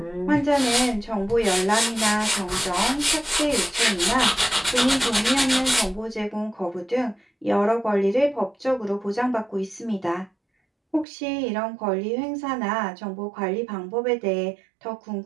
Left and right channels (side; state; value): left; drops out; at 11.1 s